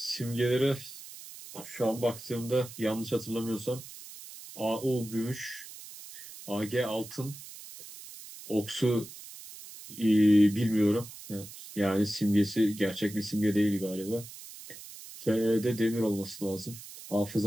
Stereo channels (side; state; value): right; noise; hiss, 15 dB below the sound